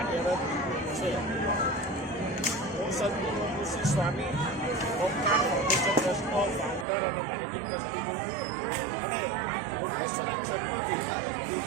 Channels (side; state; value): left; drops out; at 6.9 s